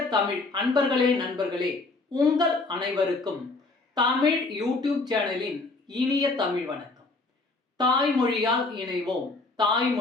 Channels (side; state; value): right; quieter; 3.4 dB